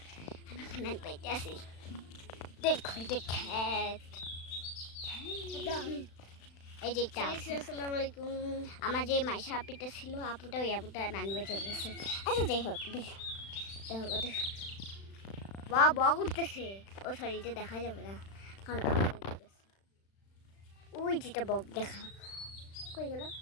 আমি খানা পাইতে আসি। দেখো এটা খ্যাত এই যে একটা আসসালামু আলাইকুম। আমার যে মাইশা আপিটা ছিল, আপুটা ওই আপুটা নানবে চলে গেছে। আচ্ছা যাই হোক, দেখো কত বা উঠতেছে। ও সরি, এটা দেখা যাবে না কারণ ওই যেটা বক দেখা কই গেল।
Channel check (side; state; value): right; late; 36 ms